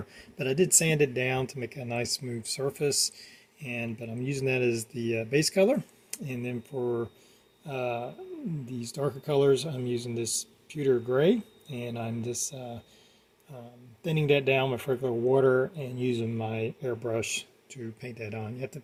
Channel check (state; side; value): identical; both; correlation 1.00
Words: but I did sand it down to make a nice smooth surface, but I'm using that as the base color. And then for these darker colors, I'm using this pewter gray, and I'm just thinning that down with regular water and using my airbrush to paint that on. You have to